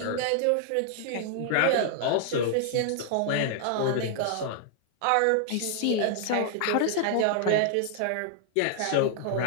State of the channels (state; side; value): different; both; correlation 0.00